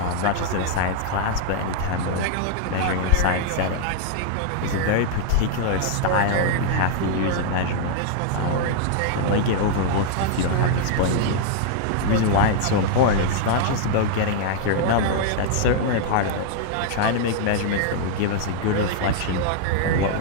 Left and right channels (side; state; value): both; different; correlation -0.01